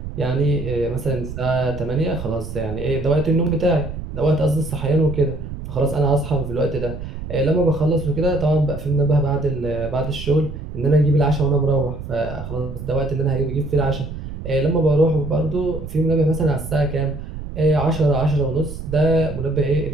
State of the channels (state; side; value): noise; right; rumble, 9 dB below the sound